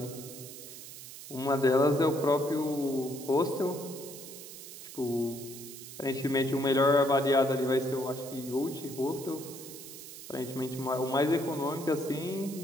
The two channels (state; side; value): noise; right; hiss, 13 dB below the sound